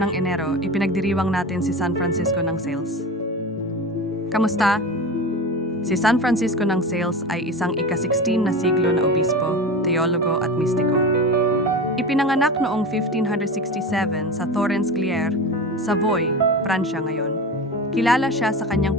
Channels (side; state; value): both; normal; correlation 0.28